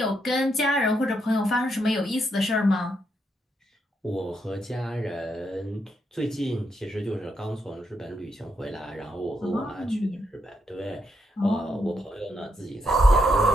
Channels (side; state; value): both; normal; correlation 0.79